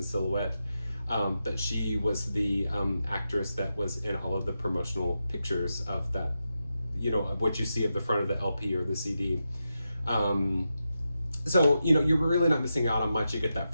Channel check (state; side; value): inverted; both; correlation -0.88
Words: silhouette. That she was the actress that was in all of the promotional pictures of that, of what you see at the front of the LP or the CD. So, you're really not missing out on much. You get that